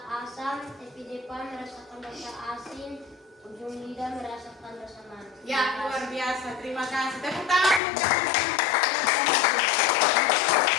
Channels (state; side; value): drops out; right; at 7.8 s